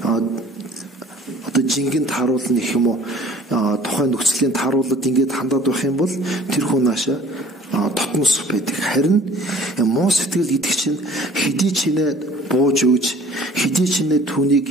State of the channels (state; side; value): normal; both; correlation 0.51